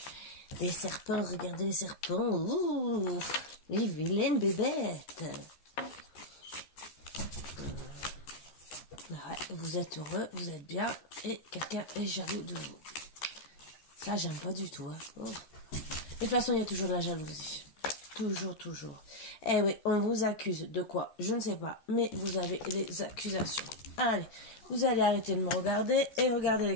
Les serpents, regardez les serpents. Ouh, les vilaines bébêtes. Ouais, vous êtes heureux, vous êtes bien, et quelqu'un est jaloux de vous. Ça, j'aime pas du tout. Hein. Oh. De toute façon, il y a toujours de la jalousie. Toujours. Eh oui, on vous accuse de quoi? Je ne sais pas, mais vous avez les accusations. Allez, Vous allez arrêter de me regarder et regarder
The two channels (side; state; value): right; late; 13 ms